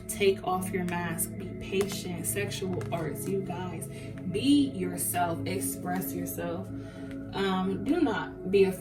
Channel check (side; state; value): both; identical; correlation 1.00